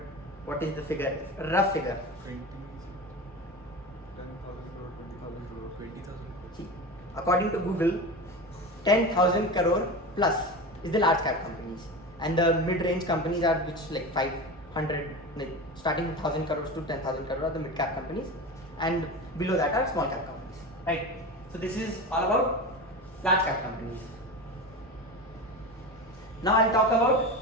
what is the figure? Rough figure. 10,000 crore, 20,000 crore, 20,000 crore. See, according to Google, 10,000 crore plus is the large cap companies, and the mid-range companies are which like 500, like starting with 1,000 crores to 10,000 crore are the mid cap companies, and below that are small cap companies, right? So this is all about large cap companies. Now I'll talk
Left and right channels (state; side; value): normal; both; correlation 0.27